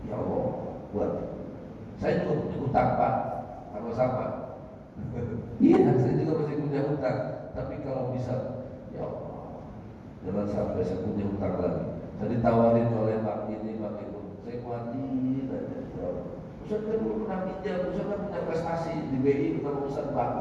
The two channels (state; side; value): identical; both; correlation 1.00